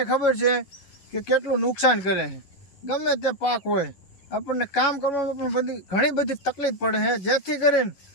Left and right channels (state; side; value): late; right; 11 ms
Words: ખબર છે કે કેટલું નુકસાન કરે છે. ગમે તે પાક હોય, આપણને કામ કરવામાં પણ ઘણી બધી તકલીફ પડે છે. જેથી કરીને